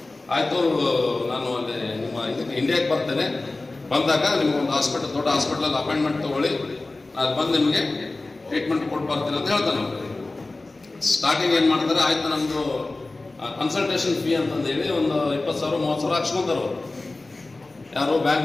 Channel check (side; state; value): right; quieter; 3.2 dB